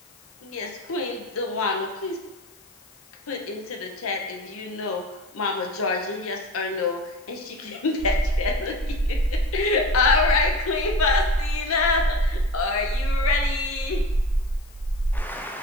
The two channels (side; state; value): left; noise; hiss, 27 dB below the sound